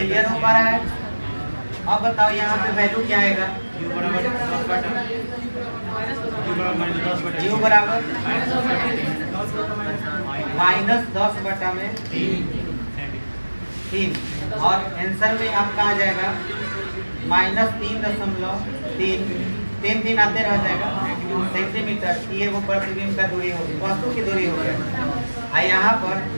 हो पा रहा है? अब बताओ यहाँ पे वैल्यू क्या आएगा? u बराबर -10/3 और आंसर में आपका आ जाएगा -3.3 आते रह जाएगा सेंटीमीटर। ये वो प्रतिबिंब का दूरी होगी, वस्तु की दूरी हो गया। यहाँ पर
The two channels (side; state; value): both; inverted; correlation -1.00